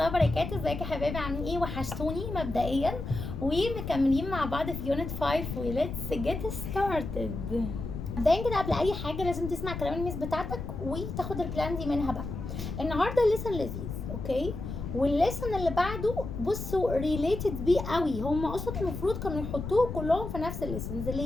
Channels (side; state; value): left; noise; rumble, 6 dB below the sound